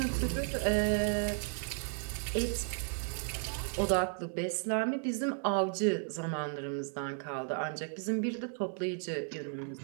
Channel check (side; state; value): left; silent; 55 dB below the other